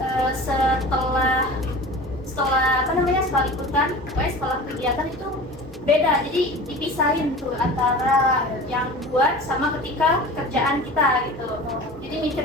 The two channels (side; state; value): both; normal; correlation 0.37